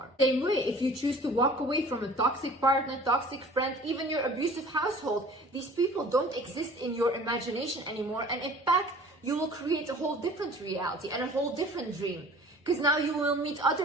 Same way, if you choose to walk away from a toxic partner, toxic friend, even your abusive household, these people don't exist in your imagination anymore, and in fact, you will create a whole different reality and a whole different dream. Because now you will meet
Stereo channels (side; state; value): both; normal; correlation 0.47